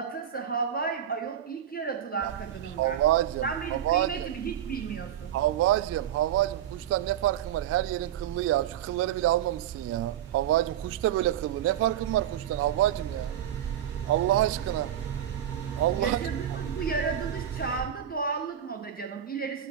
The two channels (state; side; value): quieter; left; 10.6 dB